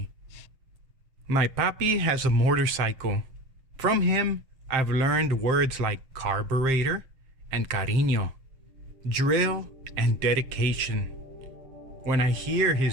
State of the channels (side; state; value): left; late; 7.5 ms